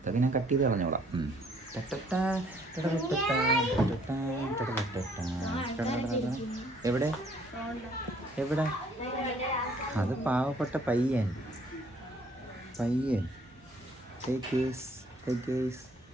ഞാൻ കട്ട് ചെയ്ത് കളഞ്ഞോളാം. എവിടെ എവിടെ അത് പാവപ്പെട്ട പയ്യൻ.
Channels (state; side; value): normal; both; correlation 0.61